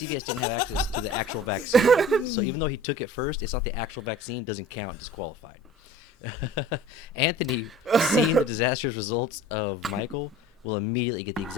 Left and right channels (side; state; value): both; normal; correlation 0.44